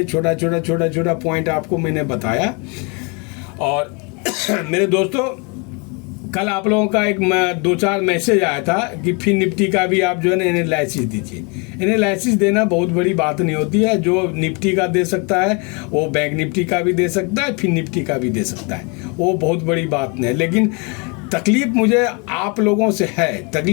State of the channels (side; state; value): right; quieter; 32.2 dB